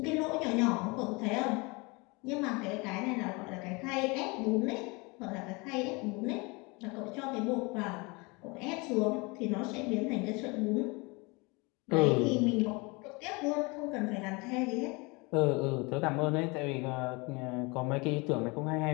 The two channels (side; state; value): right; quieter; 27.2 dB